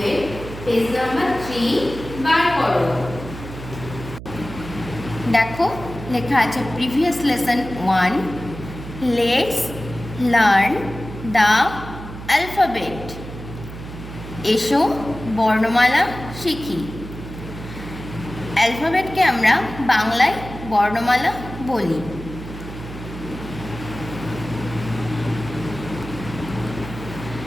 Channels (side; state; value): right; noise; hum, 12 dB below the sound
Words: পেজ নাম্বার 3 বার করো। দেখো লেখা আছে previous lesson 1, let's learn the alphabet. এসো বর্ণমালা শিখি। অ্যালফাবেটকে আমরা বাংলায় বর্ণমালা বলি।